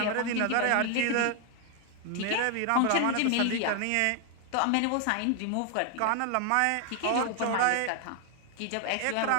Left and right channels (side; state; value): both; different; correlation 0.00